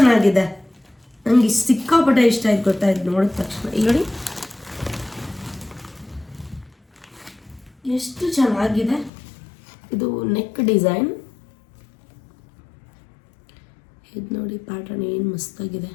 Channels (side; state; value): right; drops out; at 9.1 s